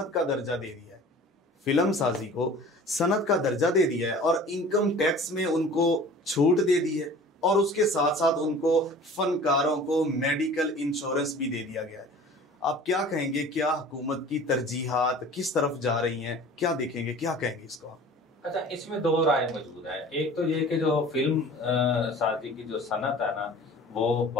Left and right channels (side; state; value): both; normal; correlation 0.44